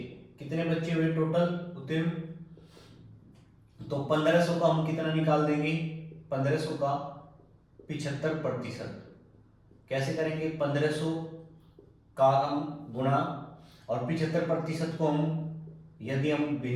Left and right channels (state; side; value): identical; both; correlation 1.00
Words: कितने बच्चे हुए टोटल उत्तीर्ण। तो 1500 का हम कितना निकाल देंगे, 1500 का 75%। कैसे करेंगे, 1500 का हम गुणा, और 75% को हम यदि हम